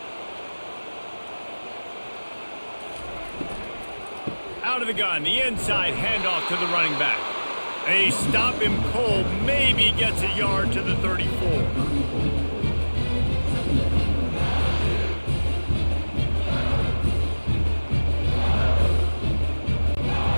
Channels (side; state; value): both; inverted; correlation -1.00